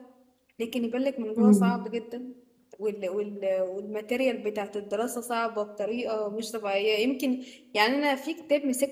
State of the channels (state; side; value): identical; both; correlation 1.00